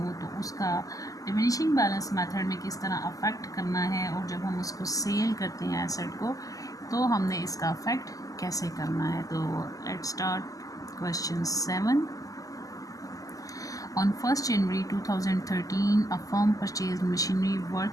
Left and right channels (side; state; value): right; late; 0.17 ms